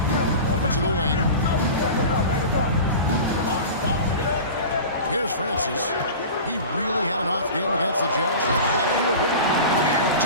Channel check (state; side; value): inverted; both; correlation -0.33